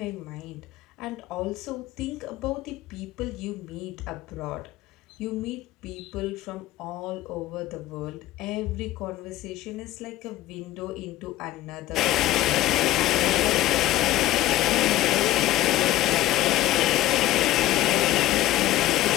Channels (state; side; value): quieter; right; 15.1 dB